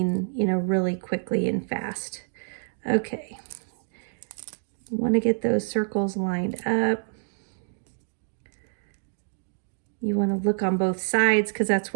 really quickly and fast. Okay. Want to get those circles lined up. You want to look on both sides because that's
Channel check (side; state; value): left; silent; digital silence